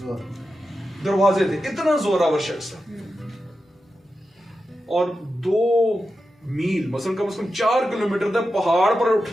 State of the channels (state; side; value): normal; both; correlation 0.90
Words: دروازے تھے، اتنا زوراور شخص تھا. اور 2 میل مثلا کم از کم 4 کلومیٹر تک پہاڑ پر